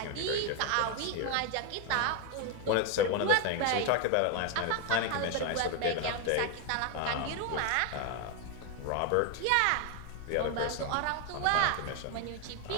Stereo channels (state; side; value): different; both; correlation 0.01